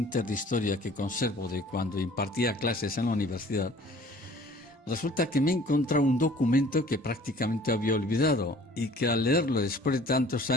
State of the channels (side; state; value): both; normal; correlation 0.51